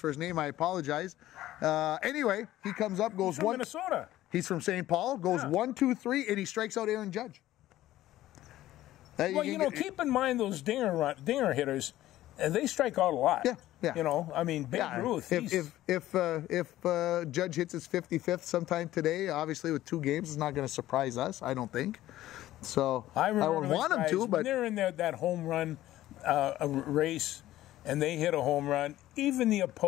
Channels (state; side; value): quieter; right; 14.6 dB